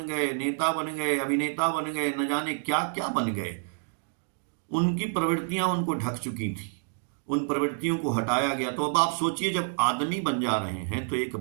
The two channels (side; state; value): left; silent; 59 dB below the other